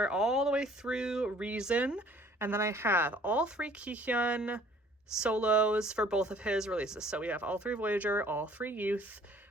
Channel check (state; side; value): normal; both; correlation 0.55